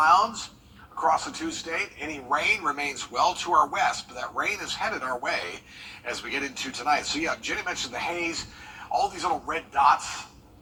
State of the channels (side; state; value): both; identical; correlation 1.00